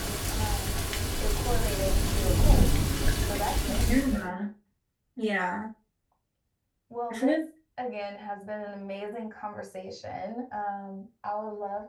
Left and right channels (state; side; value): identical; both; correlation 1.00